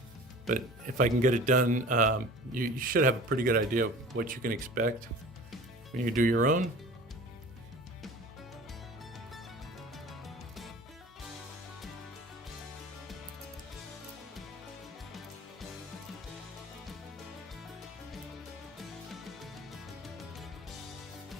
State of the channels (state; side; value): normal; both; correlation 0.41